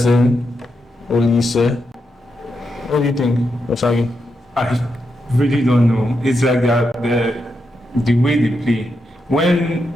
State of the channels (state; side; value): normal; both; correlation 0.84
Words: Olise? What do you think, Osagi? I really don't know. It's like the way they play. When